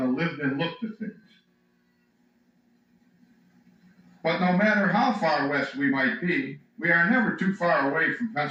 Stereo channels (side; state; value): both; identical; correlation 1.00